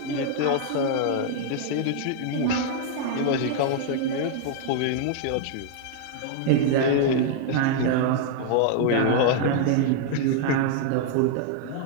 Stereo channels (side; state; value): both; different; correlation 0.00